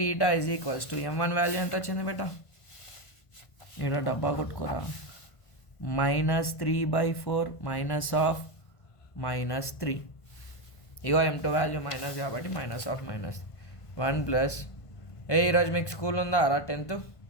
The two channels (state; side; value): late; right; 1.5 ms